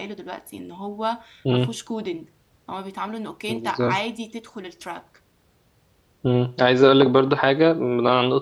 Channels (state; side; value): identical; both; correlation 1.00